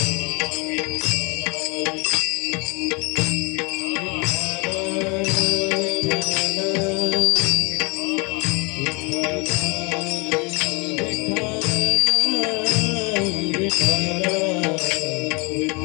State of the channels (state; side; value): quieter; right; 30.7 dB